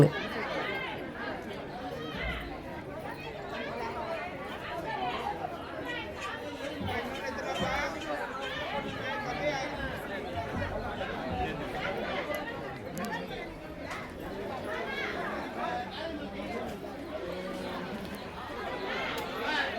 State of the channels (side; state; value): both; identical; correlation 1.00